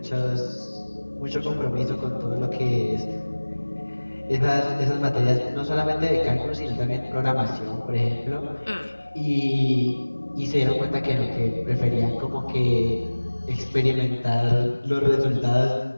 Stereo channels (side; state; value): both; inverted; correlation -1.00